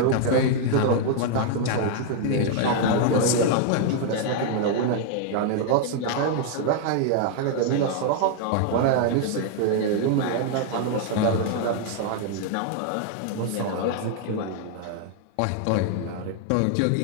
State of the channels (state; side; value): different; both; correlation 0.00